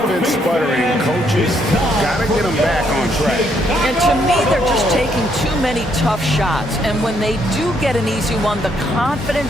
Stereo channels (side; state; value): both; normal; correlation 0.72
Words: sputtering, coaches got to get them back on track. And to me, they're just taking too many tough shots. And when they do get an easy one, the